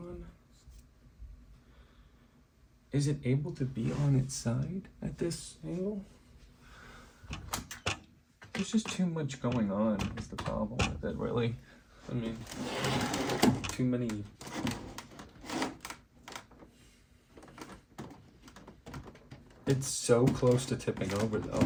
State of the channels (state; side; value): identical; both; correlation 1.00